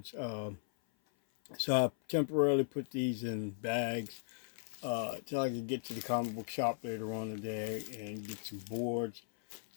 So I temporarily put these in bags till I could get to the comic book shop later on today and get some boards.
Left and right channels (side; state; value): right; silent; 53 dB below the other